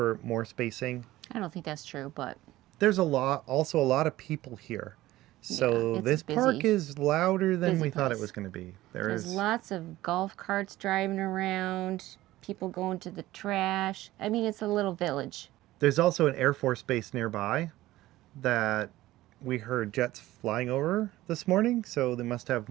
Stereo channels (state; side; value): quieter; left; 16.4 dB